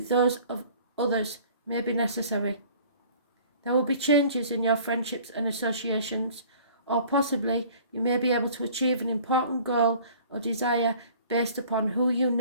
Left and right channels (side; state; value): both; inverted; correlation -0.50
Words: those of others may be necessary. There will be changes in your friendships and associations, or possibly you may be able to achieve an important goal or desire based upon who you